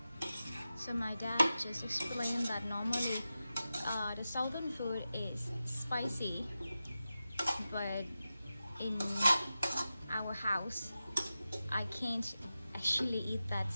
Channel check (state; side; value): inverted; both; correlation -0.93